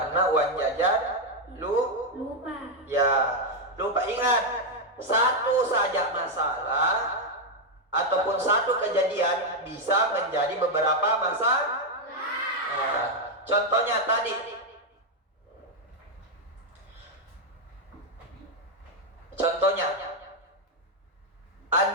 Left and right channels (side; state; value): both; normal; correlation 0.02